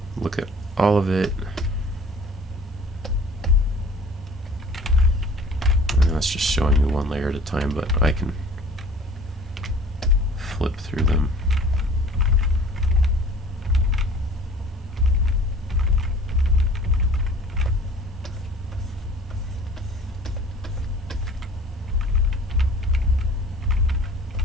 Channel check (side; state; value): both; normal; correlation 0.48